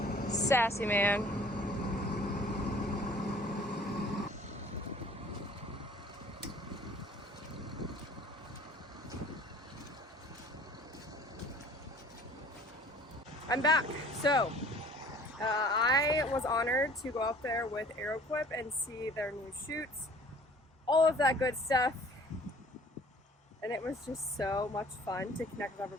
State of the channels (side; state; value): both; normal; correlation 0.51